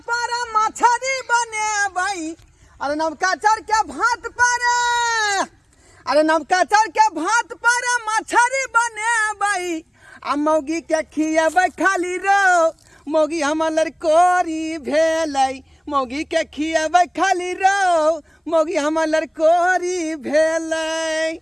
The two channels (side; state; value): both; identical; correlation 1.00